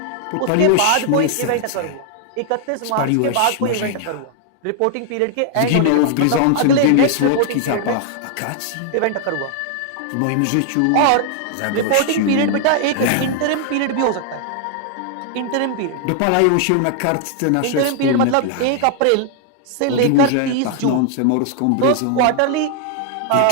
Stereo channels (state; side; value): different; both; correlation 0.00